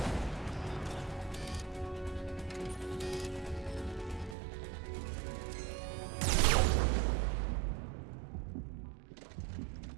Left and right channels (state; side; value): drops out; left; at 4.4 s